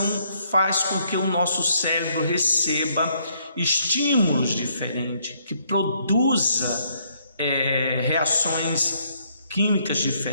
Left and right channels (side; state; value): both; inverted; correlation -0.70